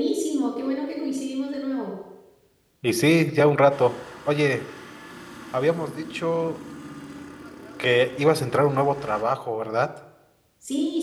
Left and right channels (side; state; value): both; identical; correlation 1.00